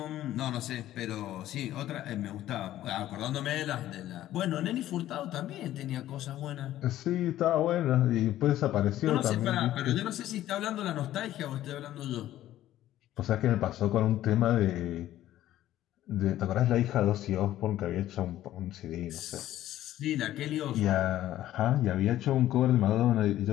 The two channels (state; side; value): quieter; right; 13.5 dB